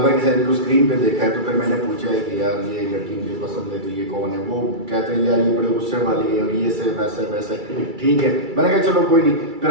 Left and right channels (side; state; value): left; late; 2.3 ms